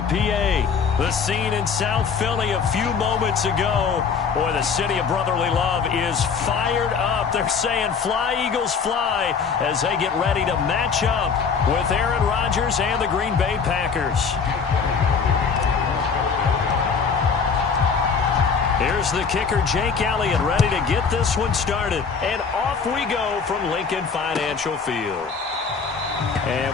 PA. The scene in South Philly a few moments ago. Boy, the city of brotherly love is fired up. They're saying, "Fly, Eagles, fly," as they get ready to match up with Aaron Rodgers and the Green Bay Packers. Here's the kicker, Jake Elliott, ready to get this one started. And off we go from Lincoln Financial Field. And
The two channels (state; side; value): quieter; right; 5.8 dB